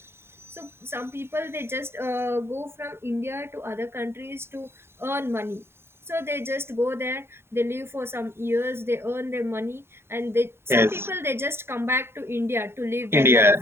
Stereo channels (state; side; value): late; left; 0.12 ms